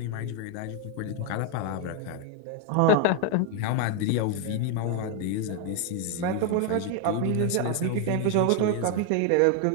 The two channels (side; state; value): both; different; correlation 0.00